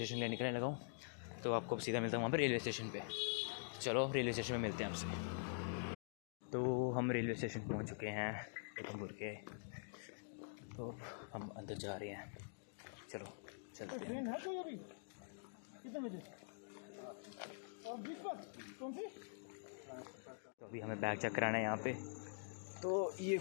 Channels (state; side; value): silent; right; digital silence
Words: ले निकलने लगा हूँ। तो आपको सीधा मिलता हूँ वहाँ पर रेलवे स्टेशन पे। चलो रेलवे स्टेशन में मिलते हैं आपसे। तो हम रेलवे स्टेशन पहुँच चुके हैं उधमपुर के। तो हम अंदर जा रहे हैं, चलो चलते हैं। ट्रेन है कोई अभी कितने बजे? और 20 पर कौन सी? तो अभी हमें बैग चेक कराना है यहाँ पे। तो ये